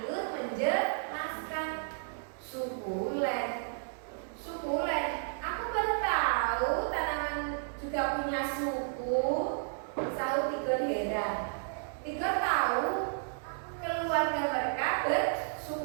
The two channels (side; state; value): left; silent; digital silence